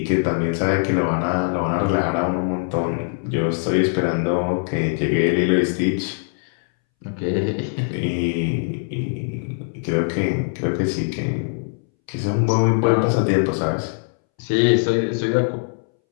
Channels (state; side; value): silent; right; 64 dB below the other